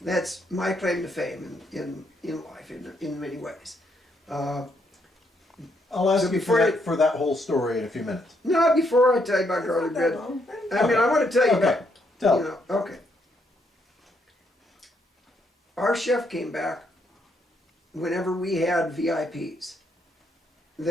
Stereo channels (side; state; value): both; normal; correlation 0.75